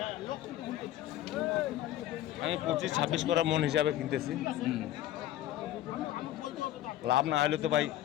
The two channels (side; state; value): right; quieter; 13.3 dB